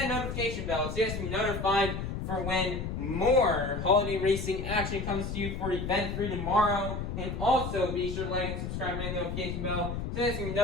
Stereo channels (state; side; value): noise; left; rumble, 4 dB below the sound